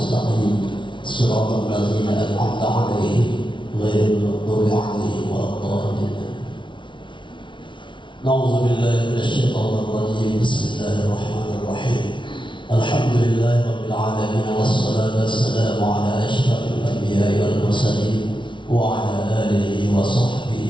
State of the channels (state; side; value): late; right; 0.24 ms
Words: صراط الذين أنعمت عليهم غير المغضوب عليهم ولا الضالين. نعوذ بالله من الشيطان الرجيم. بسم الله الرحمن الرحيم. الحمد لله رب العالمين والصلاة والسلام على أشرف الأنبياء والمرسلين وعلى آله وصحبه